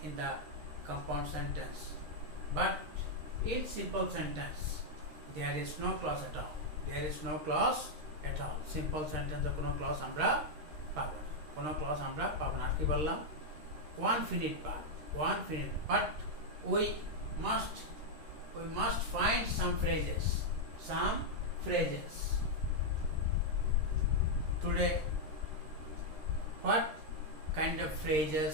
in the compound sentence. But in simple sentence, there is no clause at all. There is no clause at all. Simple sentence কোনো clause আমরা পাবো না, কোনো clause আমরা পাবো না। কি বললাম? One finite part, but we must find some phrases. Today, what kind of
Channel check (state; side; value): late; left; 13 ms